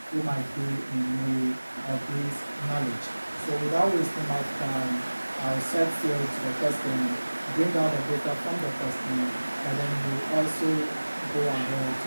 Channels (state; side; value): inverted; both; correlation -1.00